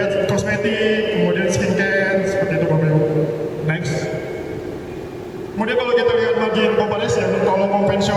kosmetik, kemudian skincare, seperti itu Bapak Ibu. Next. Kemudian kalau kita lihat margin comparison, kalau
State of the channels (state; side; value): identical; both; correlation 1.00